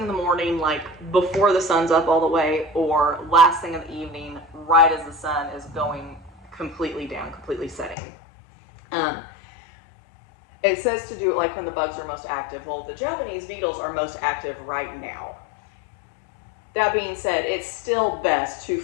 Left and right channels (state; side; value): drops out; right; at 8.0 s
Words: in the morning, like before the sun's up all the way, or last thing in the evening, right as the sun is going completely down, completely setting. It says to do it like when the bugs are most active. Well, the Japanese beetles are most active right now. That being said, it's still best to